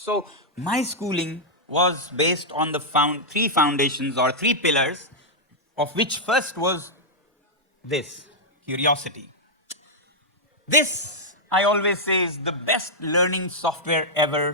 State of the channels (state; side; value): normal; both; correlation -0.07